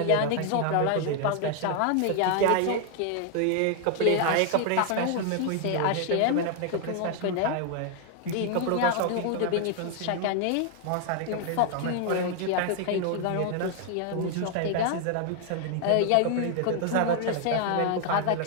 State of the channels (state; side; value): different; both; correlation 0.00